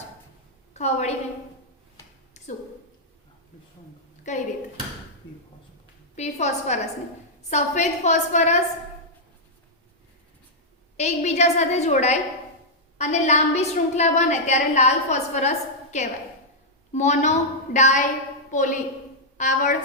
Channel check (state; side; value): normal; both; correlation -0.06